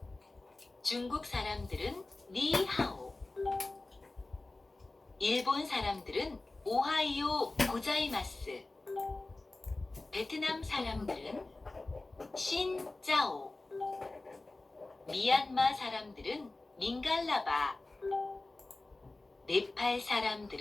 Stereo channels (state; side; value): quieter; right; 3.1 dB